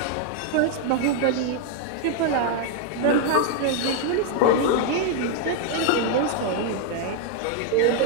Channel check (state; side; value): different; both; correlation 0.00